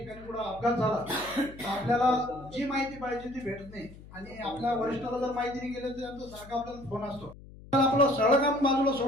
पुढे अपघात झाला तर आपल्याला जी माहिती पाहिजे ती भेटत नाही आणि आपल्या वरिष्ठाला जर माहिती नाही गेली तर त्यांचा सारखा आपल्याला फोन असतो. आपलं सरळ काम बाजूला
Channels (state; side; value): noise; left; hum, 18 dB below the sound